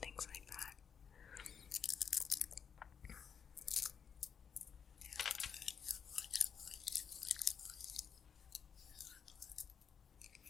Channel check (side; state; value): right; quieter; 7.1 dB